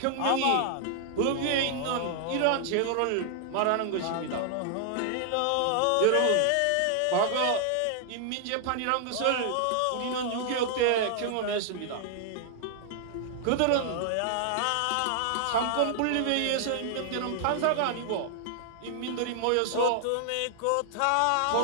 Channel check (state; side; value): different; both; correlation 0.00